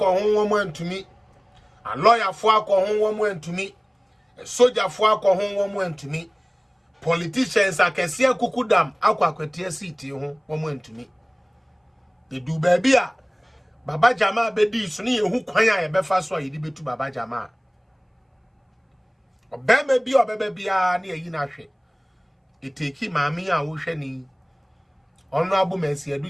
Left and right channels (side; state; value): both; identical; correlation 1.00